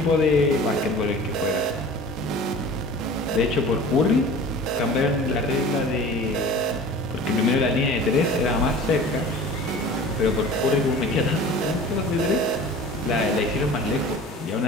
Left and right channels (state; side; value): normal; both; correlation 0.41